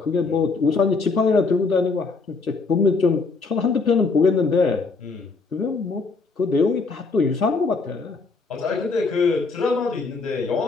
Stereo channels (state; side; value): quieter; right; 4.2 dB